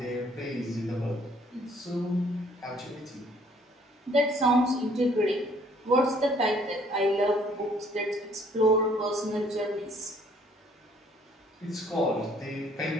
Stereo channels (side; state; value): both; normal; correlation 0.61